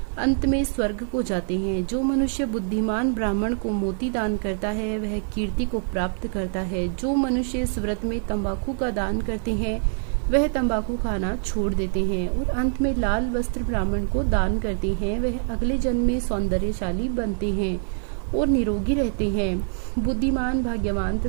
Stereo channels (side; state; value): left; silent; digital silence